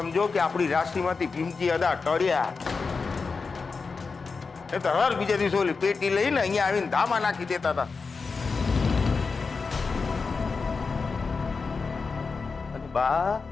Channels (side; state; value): right; quieter; 4.6 dB